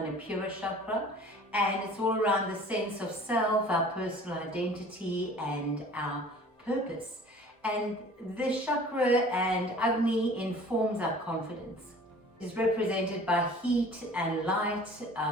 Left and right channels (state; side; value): normal; both; correlation 0.47